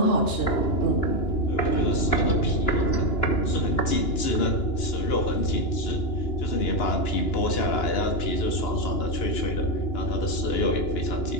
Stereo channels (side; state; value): right; late; 2.9 ms